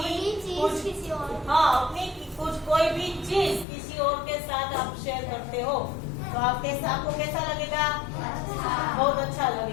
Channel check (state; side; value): drops out; right; at 3.7 s